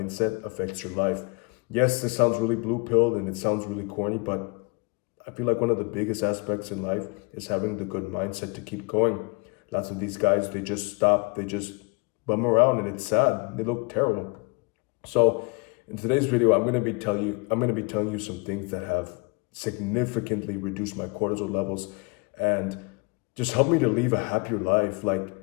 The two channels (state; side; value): quieter; right; 30.8 dB